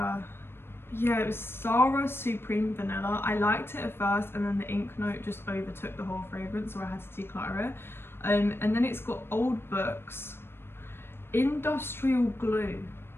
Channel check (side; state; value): right; late; 0.11 ms